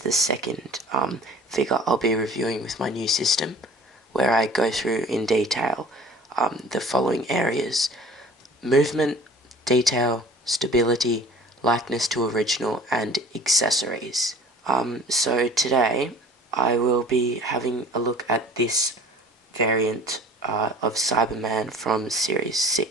the second figure I'll be reviewing with my new system, where I go through in detail the following areas: movement, detail, stability, likeness to original, and accessories. So today I will be having a look at this variant of Cyberman from Series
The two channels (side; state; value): both; normal; correlation 0.46